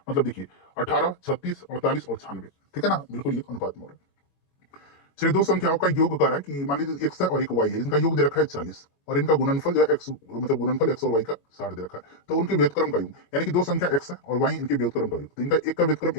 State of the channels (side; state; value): right; late; 22 ms